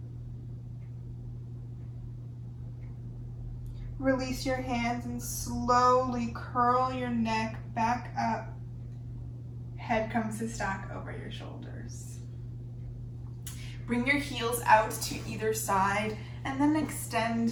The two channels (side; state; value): both; identical; correlation 1.00